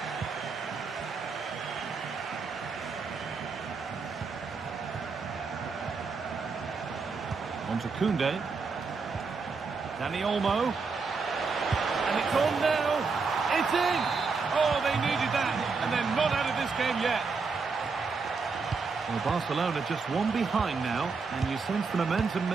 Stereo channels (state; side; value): quieter; left; 4.7 dB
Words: On to Koundé. Dani Olmo. And it's on now. It's in. Oh, they needed that. And they're not out of this game yet. Well, Barcelona just one behind now. And you sense the momentum